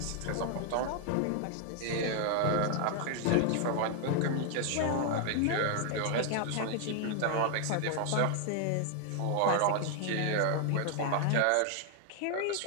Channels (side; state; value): both; different; correlation 0.00